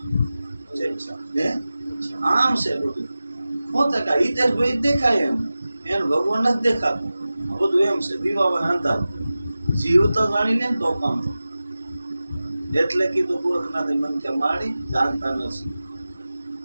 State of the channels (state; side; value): inverted; both; correlation -0.96